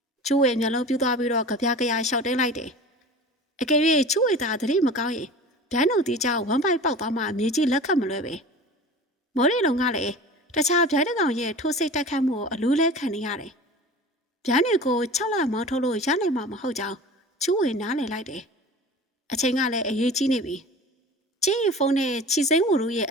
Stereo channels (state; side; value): normal; both; correlation 0.37